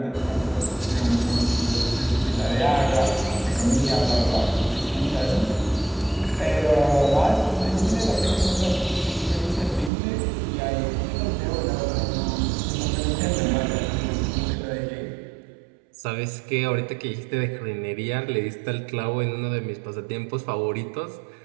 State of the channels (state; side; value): drops out; left; at 9.9 s